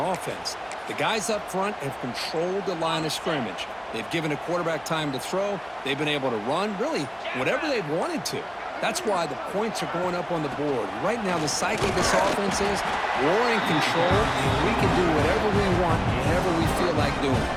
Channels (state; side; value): identical; both; correlation 1.00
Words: offense, the guys up front have controlled the line of scrimmage. They've given a quarterback time to throw. They've been able to run, really, whatever they've wanted to. That's why the points are going up on the board. Right now, the psyche of this offense is we're in control, and we can do whatever we want, whenever we feel like doing.